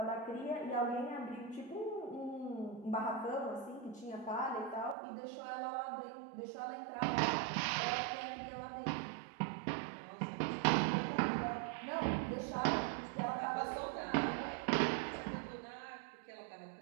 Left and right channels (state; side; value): drops out; left; at 5.0 s